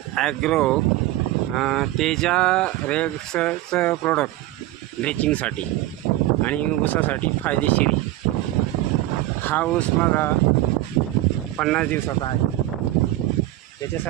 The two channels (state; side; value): quieter; left; 16.0 dB